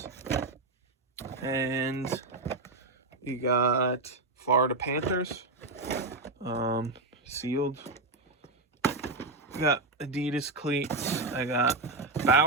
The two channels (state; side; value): quieter; left; 3.2 dB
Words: And you got Florida Panthers. Sealed. I got Adidas cleats. I got